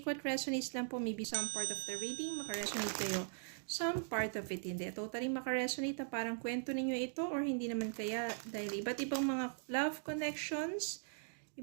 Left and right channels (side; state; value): left; silent; digital silence